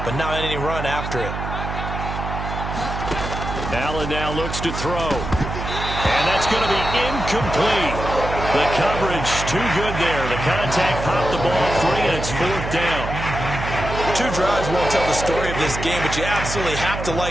but not any run after it. Allen now looks to throw. And that's going to be incomplete. The coverage too good there. The contact popped the ball free, and it's 4th down. 2 drives won't tell the story of this game, but you absolutely have to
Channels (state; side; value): noise; right; hum, 6 dB below the sound